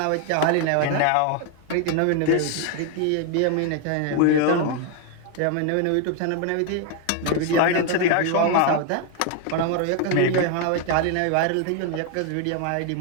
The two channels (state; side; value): different; both; correlation 0.01